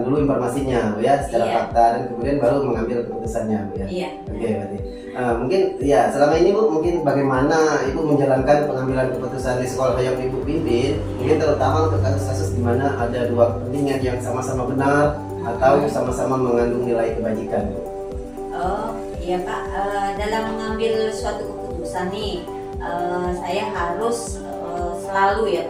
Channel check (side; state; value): both; identical; correlation 1.00